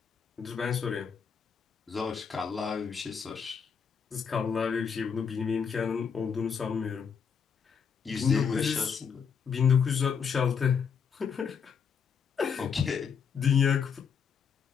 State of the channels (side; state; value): right; quieter; 6.6 dB